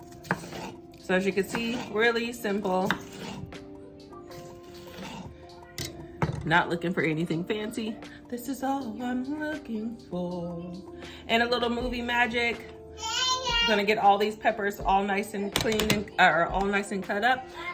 So as you can see, really simple. Not looking for anything fancy. This is all I'm looking for. And a little movie magic. I'm gonna get all these peppers all nice and clean and all nice and cut up,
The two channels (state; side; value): identical; both; correlation 1.00